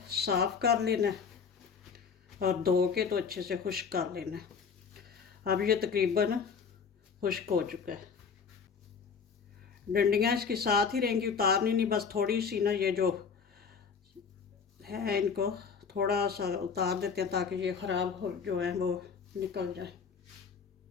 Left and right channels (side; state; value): right; quieter; 6.0 dB